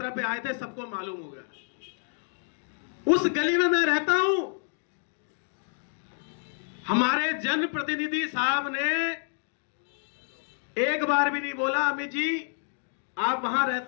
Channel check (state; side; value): silent; right; digital silence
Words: पे आए थे, सबको मालूम हो गया। उस गली में मैं रहता हूं, हमारे जनप्रतिनिधि साहब ने एक बार भी नहीं बोला अमित जी आप वहां